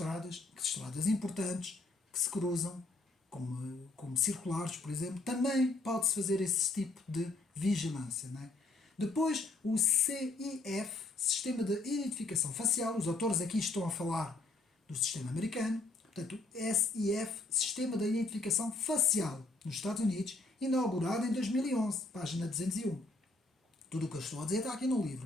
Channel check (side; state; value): right; quieter; 3.2 dB